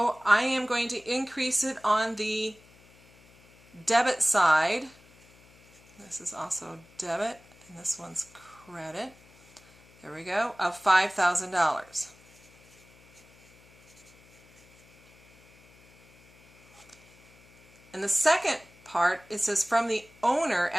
I am going to increase it on the debit side. This is also debit, and this one's credit. There we go, of $5,000. And the second part, it says from the owner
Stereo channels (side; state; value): left; noise; hum, 27 dB below the sound